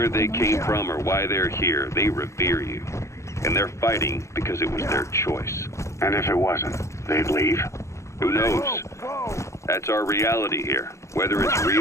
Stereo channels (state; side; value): late; right; 0.14 ms